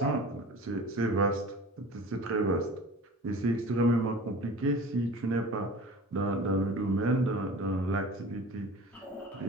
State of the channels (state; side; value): normal; both; correlation 0.39